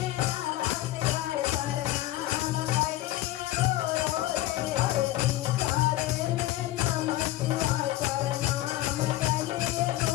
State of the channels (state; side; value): quieter; right; 15.7 dB